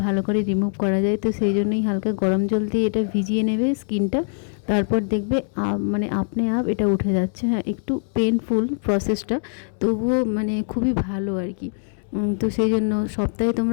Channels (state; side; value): silent; right; 64 dB below the other